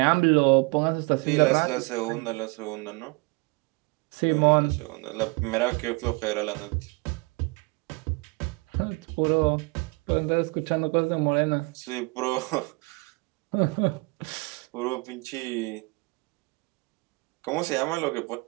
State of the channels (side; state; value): left; quieter; 29.1 dB